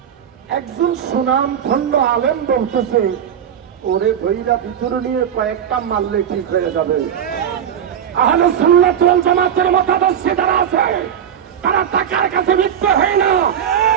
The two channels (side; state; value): left; quieter; 9.0 dB